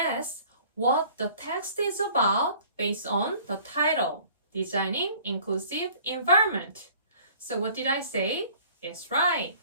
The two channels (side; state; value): both; inverted; correlation -0.52